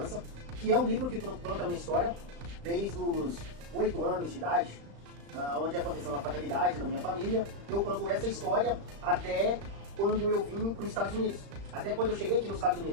que é um livro que conta uma história desde os 8 anos de idade, onde aconteceu uma fatalidade na minha família. Eu conto essa história até quando eu vim para os Estados Unidos, até quando eu cheguei aqui nos Estados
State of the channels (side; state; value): left; late; 35 ms